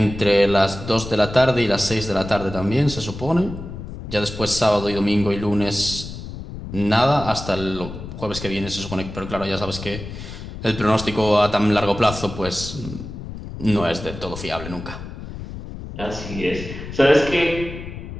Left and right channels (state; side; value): noise; left; rumble, 10 dB below the sound